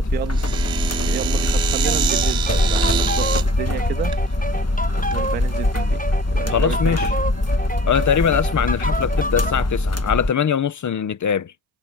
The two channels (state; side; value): normal; both; correlation 0.45